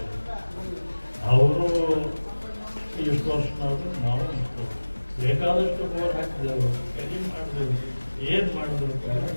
ಅವರು ಇಷ್ಟು ವರ್ಷನಾದ್ರು ನಾವು ಇಷ್ಟು ಬೇಕಾದಷ್ಟು ಬೋರ್ ಹಾಕಿದೆವು, ಕಡಿಮೆ ಮಾಡಿದೆವು, ಏನು ಮಾಡಿದ್ರು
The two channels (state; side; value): inverted; both; correlation -1.00